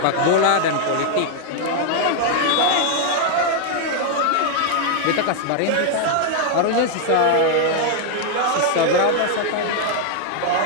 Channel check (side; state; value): both; different; correlation 0.00